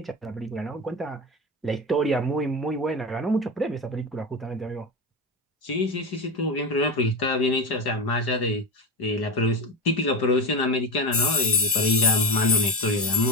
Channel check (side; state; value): both; normal; correlation 0.20